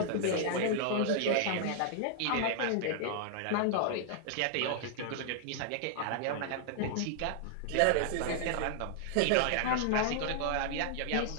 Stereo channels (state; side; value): different; both; correlation -0.01